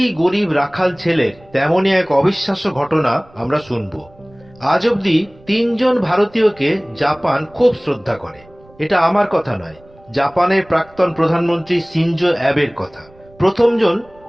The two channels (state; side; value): noise; right; rumble, 27 dB below the sound